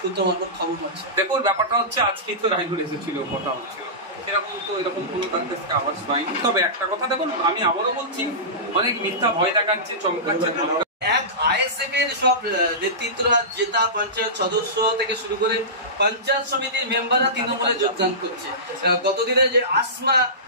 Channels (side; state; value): both; normal; correlation -0.20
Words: মারফত খবর পাচ্ছে। দেখুন, ব্যাপারটা হচ্ছে, আজকেই তো রাইনুল এসেছিল, কথা হচ্ছিল, এরকম কোনো তার কাছে আওয়াজ পাইনি। তবে একটা কথা দেখুন, আমি আবারও বলছি, অনেক মিথ্যা ভয় দেখাচ্ছে, চমকাচ্ছে। এক আইএসএফ এর সব নেতৃত্বরা, জেতা পঞ্চায়েত সদস্য থেকে শুরু করে পঞ্চায়েত সমিতির মেম্বাররা তৃণমূলে যোগদান করছে। গতদিনে যে আসমা